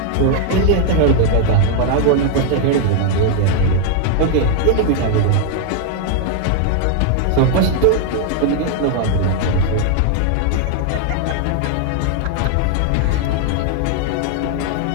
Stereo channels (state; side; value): different; both; correlation 0.00